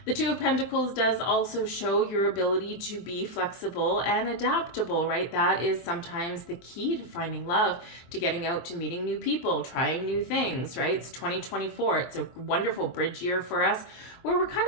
The Two of Pentacles does also show your ability to be flexible and adaptable, right? That is sometimes the key to finding love, to getting out, to meeting new people, trying new things, right? It's 2024. It's a wonderful bridge year for us, where we're kind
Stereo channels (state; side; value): late; right; 23 ms